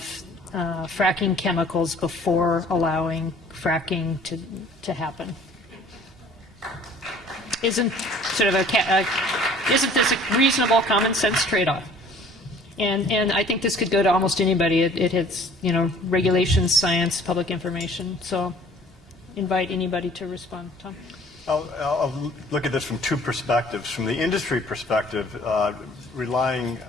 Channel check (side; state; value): both; normal; correlation 0.52